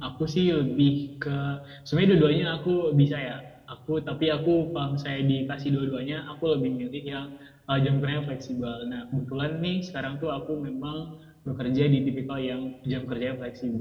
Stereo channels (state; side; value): identical; both; correlation 1.00